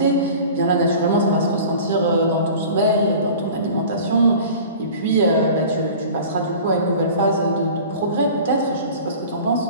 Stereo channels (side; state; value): both; inverted; correlation -0.41